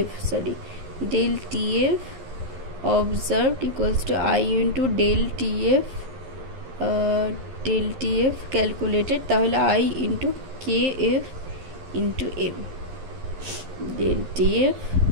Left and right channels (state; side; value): late; left; 11 ms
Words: observed equals to I into del TF calculated, তাহলে I into KF into M, del TF